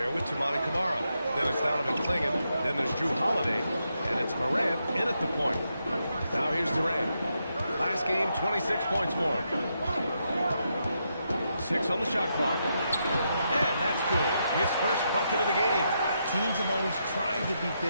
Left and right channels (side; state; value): both; inverted; correlation -0.82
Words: with Toumani Camara. Then it's Donovan Clingan. Then there's Jrue Holiday. And it's Morant in at the point. Now here's Durant. Last game, 26 points for him. 6 on the shot clock. And that's good. His first bucket of the game. Teams have always tried to be